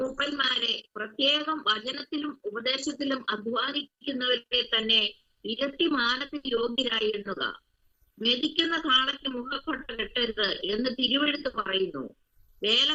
പ്രത്യേകം വചനത്തിലും ഉപദേശത്തിലും അധ്വാനിക്കുന്നവരെ തന്നെ ഇരട്ടി മാനത്തിന് യോഗ്യരായി എണ്ണുക. മെതിക്കുന്ന കാളയ്ക്ക് മുഖക്കൊട്ട കെട്ടരുത് എന്ന് തിരുവെഴുത്ത് പറയുന്നു.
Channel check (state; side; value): identical; both; correlation 1.00